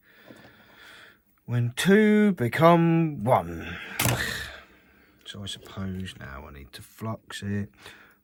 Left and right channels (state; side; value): identical; both; correlation 1.00